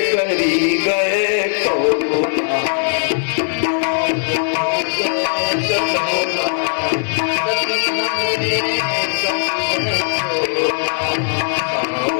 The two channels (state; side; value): silent; right; 67 dB below the other